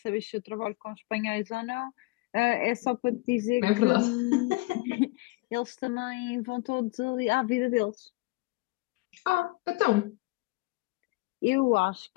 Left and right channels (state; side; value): quieter; right; 23.4 dB